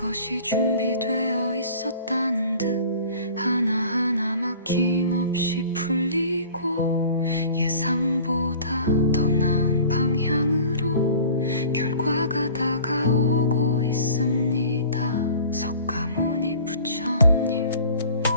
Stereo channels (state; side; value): inverted; both; correlation -0.45